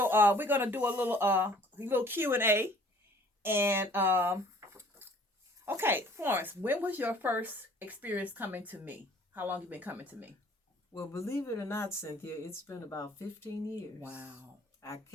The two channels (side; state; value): both; normal; correlation 0.54